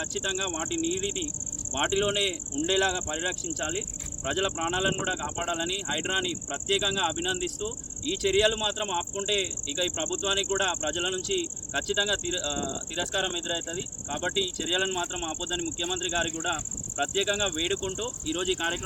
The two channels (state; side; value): identical; both; correlation 1.00